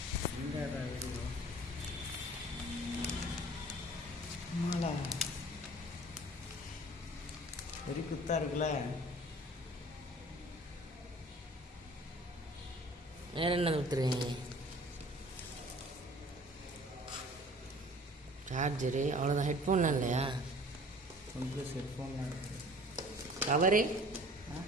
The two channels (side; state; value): both; normal; correlation 0.48